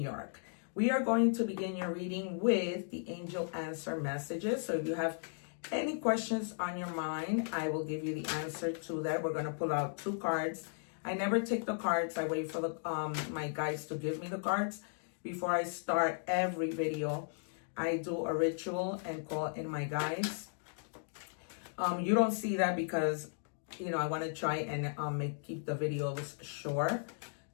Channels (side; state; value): right; silent; digital silence